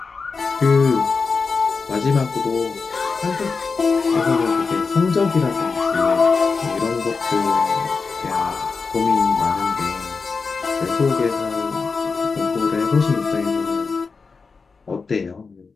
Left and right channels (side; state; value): right; quieter; 4.7 dB